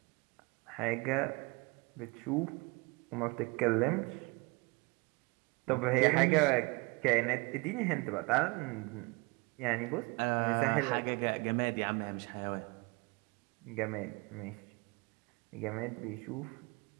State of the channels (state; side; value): quieter; left; 27.4 dB